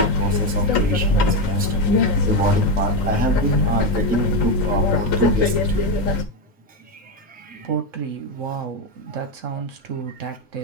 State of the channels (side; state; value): both; normal; correlation 0.09